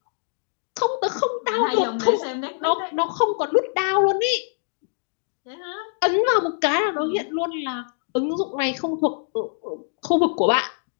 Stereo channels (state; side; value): silent; right; digital silence